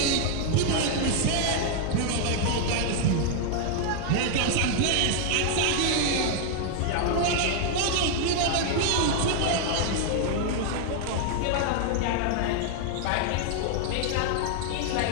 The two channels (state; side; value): different; both; correlation 0.00